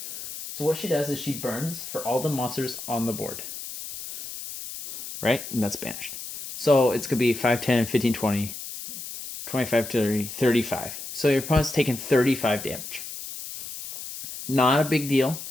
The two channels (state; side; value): noise; left; hiss, 10 dB below the sound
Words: So what she does is she burns for all the monsters on the board. Right? And that's banished. So it's going to be 5, 10, 15, 20, 25, 30, 35. So your opponent's taking 35 damage. Not a big deal.